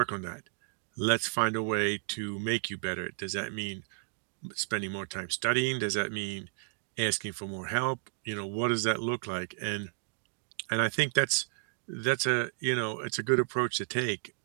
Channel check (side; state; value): left; silent; digital silence